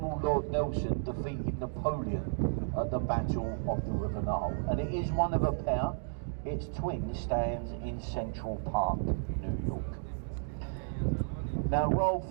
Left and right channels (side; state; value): left; silent; digital silence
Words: Lord Nelson defeated Napoleon at the Battle of the River Nile. And it is one of a pair. Its twin stands in Central Park, New York. Now Royal